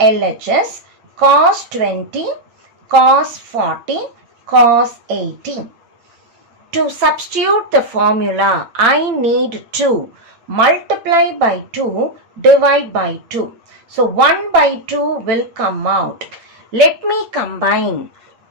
Cos 20, cos 40, cos 80. To substitute the formula, I need to multiply by 2, divide by 2. So 1 by 2 will come out. Let me combine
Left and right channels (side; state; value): left; late; 8.8 ms